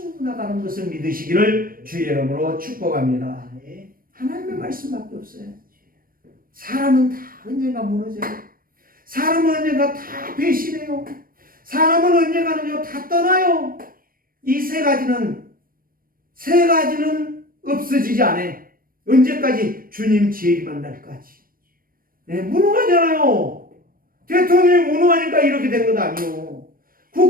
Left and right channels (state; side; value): late; left; 0.41 ms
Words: 것을 믿으시기를 주의 이름으로 축복합니다. 하나님의 말씀밖에 없어요. 사람은 다 언젠가 무너져요. 사람은 언젠가 다 배신해요. 사람은 언젠가는요 다 떠나요. 이 세 가지는 없어지지 않아요. 언제까지? 주님 재림한 날까지. 무능하잖아요. 대통령이 무능하니까 이렇게 된 것 아니요.